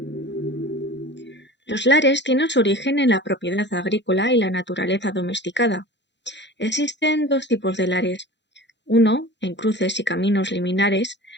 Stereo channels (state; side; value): late; right; 0.52 ms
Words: Los lares tienen su origen en la propiedad agrícola y la naturaleza domesticada. Existen dos tipos de lares. Uno, en cruces y caminos liminares